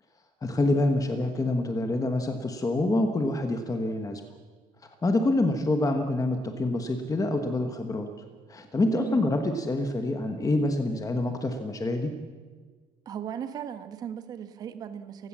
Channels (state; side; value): normal; both; correlation 0.82